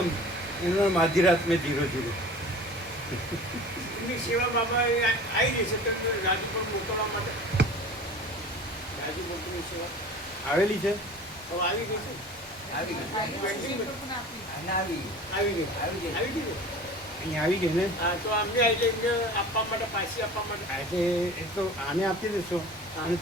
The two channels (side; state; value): both; normal; correlation 0.40